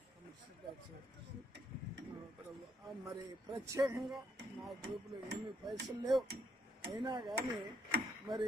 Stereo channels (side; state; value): both; normal; correlation 0.73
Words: మరి ప్రత్యేకంగా నా గ్రూపులో ఏమీ పైసలు లేవు, అయినా కానీ